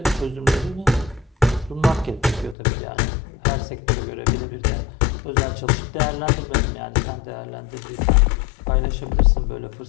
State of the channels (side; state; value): right; drops out; at 2.6 s